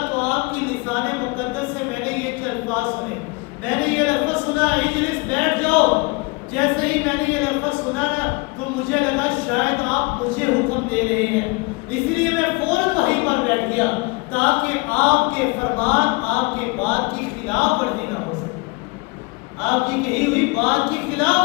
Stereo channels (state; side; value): quieter; right; 26.8 dB